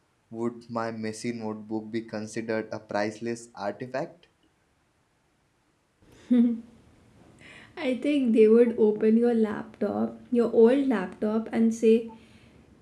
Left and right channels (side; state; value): both; identical; correlation 1.00